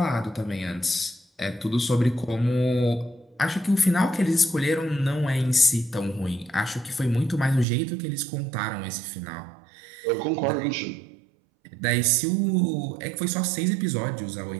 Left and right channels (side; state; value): left; drops out; at 7.7 s